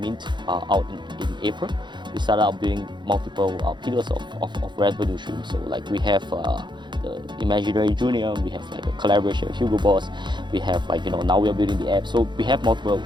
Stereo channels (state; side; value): late; left; 0.22 ms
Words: out in April. We started out building multiple pillars of revenue streams. So like we have the Imaginary Junior, we have like a collaboration with Hugo Boss, we have like now we are building the app, so we have multiple